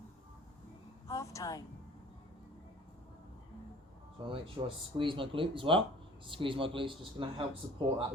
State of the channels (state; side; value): normal; both; correlation 0.49